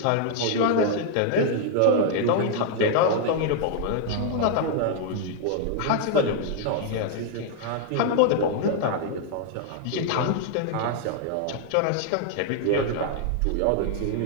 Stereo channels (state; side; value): different; both; correlation 0.00